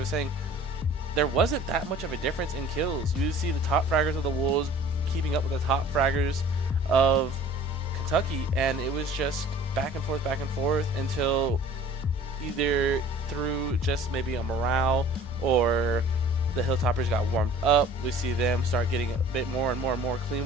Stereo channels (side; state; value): both; normal; correlation 0.48